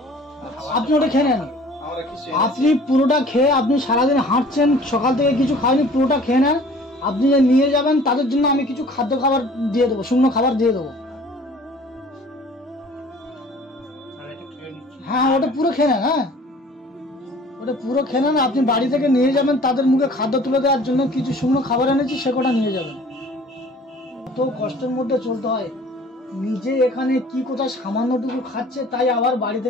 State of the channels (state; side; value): normal; both; correlation 0.50